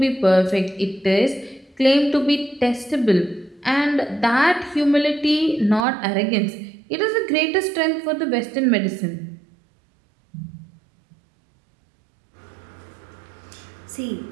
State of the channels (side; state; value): left; drops out; at 5.9 s